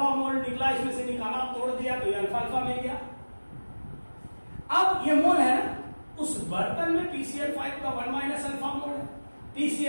मोल निकला, इसमें से निकाला, तोड़ दिया तो ये अल्फा अल्फा मिल गया। अब ये मोल है ना, उस बर्तन में PCl5 का 1 माइनस अल्फा मोल है,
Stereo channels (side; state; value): both; inverted; correlation -1.00